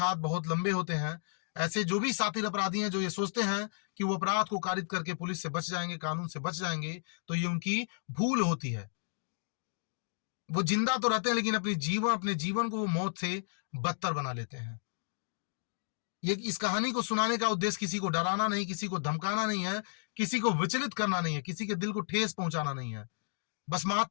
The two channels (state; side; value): silent; right; digital silence